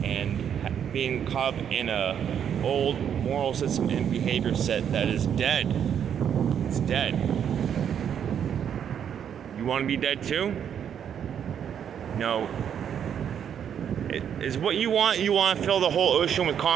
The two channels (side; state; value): left; quieter; 8.6 dB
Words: and being caught up in a old moral system and behavior set that is dead. It's dead. You want to be dead too? No. Is what you want to fill the whole ocean with